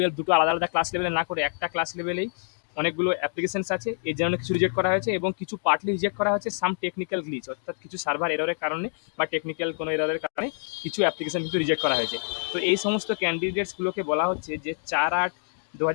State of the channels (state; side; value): silent; right; digital silence